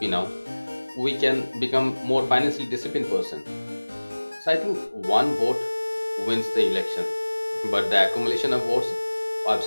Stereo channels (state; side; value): inverted; both; correlation -1.00